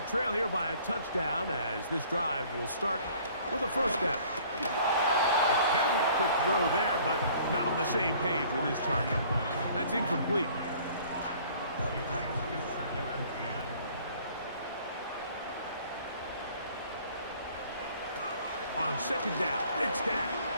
trail here by a touchdown as this drive will start with a first down. A very quick throw there, but not on the same page with his target. That's incomplete. On second down, it's Dak.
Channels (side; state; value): both; inverted; correlation -0.54